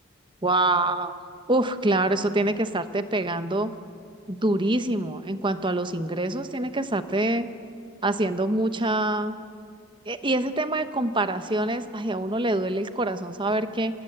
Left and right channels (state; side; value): normal; both; correlation 0.46